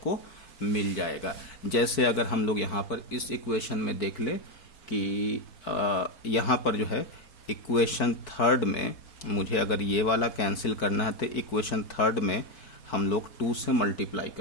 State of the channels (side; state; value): right; late; 4.5 ms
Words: मिल जाएगा। जैसे अगर हम लोग यहाँ पर इस इक्वेशन में देख ले कि यहाँ पर जो है इक्वेशन 3rd में मुझे अगर ये वाला कैंसिल करना है तो इक्वेशन 3rd में हम लोग 2 से मल्टीप्लाई